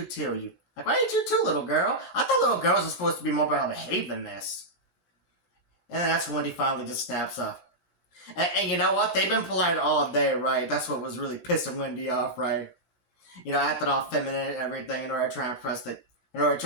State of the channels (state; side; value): late; right; 16 ms